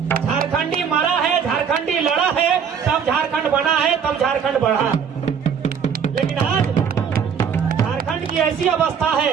झारखंडी मरा है, झारखंडी लड़ा है, तब झारखंड बना है, तब झारखंड बढ़ा। लेकिन आज झारखंड की ऐसी अवस्था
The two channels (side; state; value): left; quieter; 7.2 dB